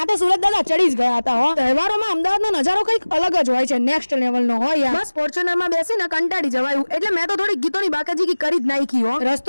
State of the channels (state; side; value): inverted; both; correlation -1.00